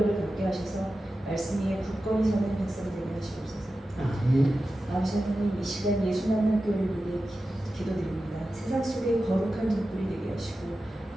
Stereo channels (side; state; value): both; normal; correlation 0.93